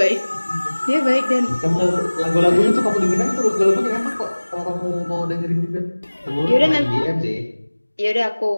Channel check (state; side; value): inverted; both; correlation -1.00